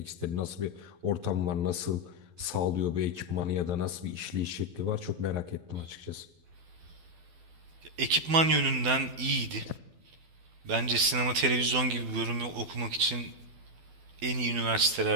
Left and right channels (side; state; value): left; late; 12 ms